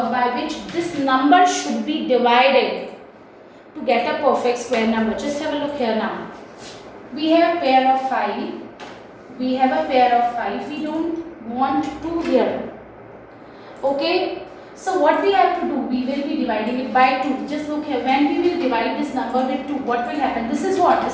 by which this number should be divided to get a perfect square number. Just have a look here now. We have a pair of 5. We have a pair of 5. We don't want 2 here. Okay. So what we have to do, we will be dividing it by 2. Just look here, when we will divide this number with 2, what will happen? This is what?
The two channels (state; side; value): identical; both; correlation 1.00